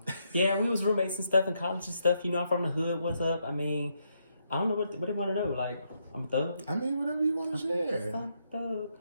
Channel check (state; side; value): inverted; both; correlation -0.78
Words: yeah, we was roommates and stuff in college and stuff. You know, I'm from the hood. What's up? I mean, I don't know what they want to know. Like, I'm a thug. I mean, whatever you want to share. I'm a